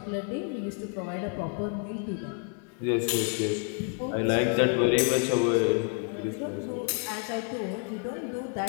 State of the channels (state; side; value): quieter; right; 39.9 dB